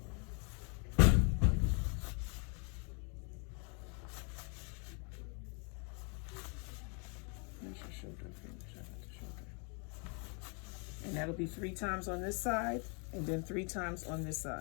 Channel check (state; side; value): quieter; right; 36.9 dB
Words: And that'll be 3 times on this side, and then 3 times on this